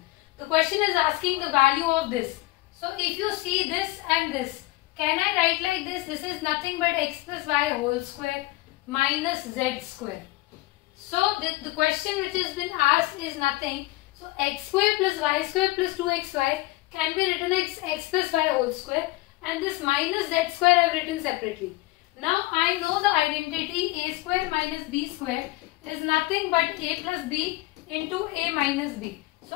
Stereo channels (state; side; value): quieter; right; 19.5 dB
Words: The question is asking the value of this. So if you see this and this, can I write like this? This is nothing but x plus y whole square minus z square. So the question which has been asked is nothing. So x square plus y square plus 2xy can be written as x plus y whole square, and this minus z square I have written separately. Now I know the identity a square minus b square is nothing but a plus b into a minus b.